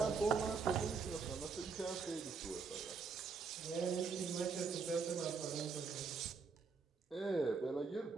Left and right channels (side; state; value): left; quieter; 5.0 dB